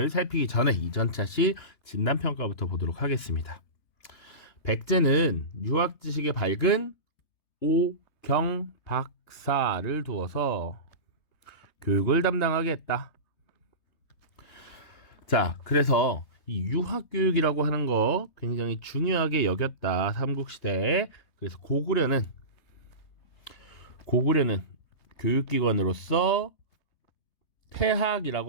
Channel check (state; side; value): late; right; 3.2 ms